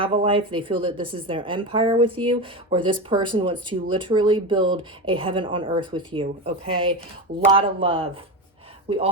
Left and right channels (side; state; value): both; normal; correlation 0.19